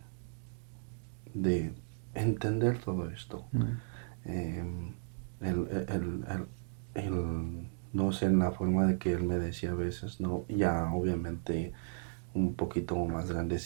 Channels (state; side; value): silent; left; digital silence